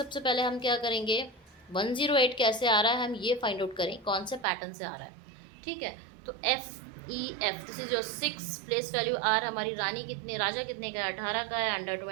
पहले हम क्या करेंगे, 108 कैसे आ रहा है हम ये फाइंड आउट करें, कौन से पैटर्न से आ रहा है, ठीक है। तो FEF this is your 6 place value. R हमारी रानी कितने, राजा कितने का है, 18 का है, अंडर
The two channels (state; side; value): drops out; left; at 4.5 s